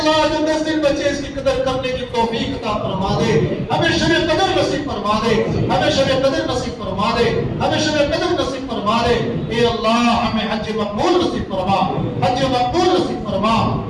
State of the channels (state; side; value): identical; both; correlation 1.00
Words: جو 10 دن بچے اس کی قدر کرنے کی توفیق عطا فرما دے، ہمیں شب قدر نصیب فرما دے، ہمیں شب قدر نصیب فرما دے، ہمیں شب قدر نصیب فرما فرما لے. اے اللہ ہمیں حج مقبول نصیب فرما, حج مقبول نصیب فرما,